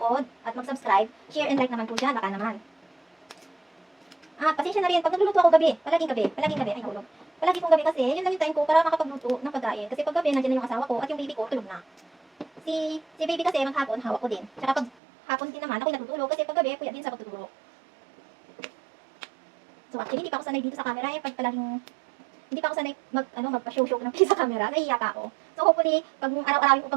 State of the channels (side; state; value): left; drops out; at 14.9 s